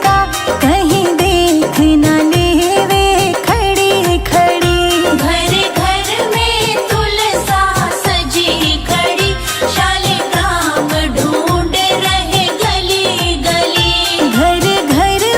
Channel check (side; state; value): both; identical; correlation 1.00